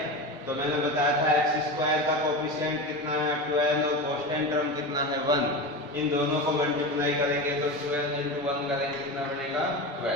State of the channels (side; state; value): both; normal; correlation 0.24